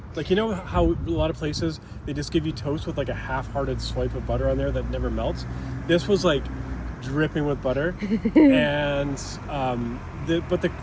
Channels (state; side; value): identical; both; correlation 1.00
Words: like you know how a lot of places they just give you toast with like a half-hearted swipe of butter on there that never melts. This was like dripping with butter, and